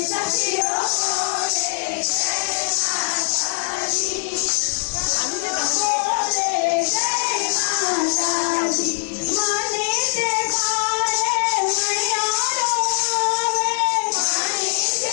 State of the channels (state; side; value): silent; right; digital silence